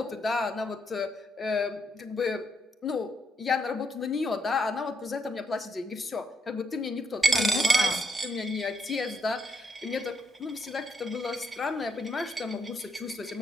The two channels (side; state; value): both; normal; correlation 0.76